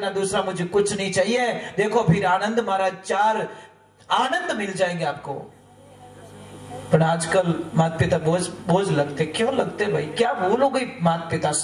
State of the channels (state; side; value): identical; both; correlation 1.00